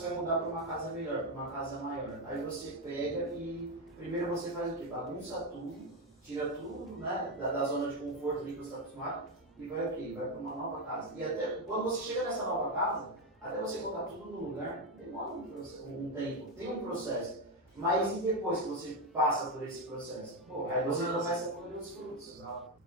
vai mudar para uma casa melhor, para uma casa maior. Aí você pega e primeiro você faz o quê? Bagunça tudo, tira tudo, né, da zona de conforto ali que você está acostumado e vai o quê? Vai para uma nova casa. E até quando você chega nessa nova casa, até você colocar tudo no lugar, demora um tempo, tem um processo. Mas e depois que você passa por esse processo? Aí você começa a colher os frutos.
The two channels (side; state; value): both; normal; correlation 0.08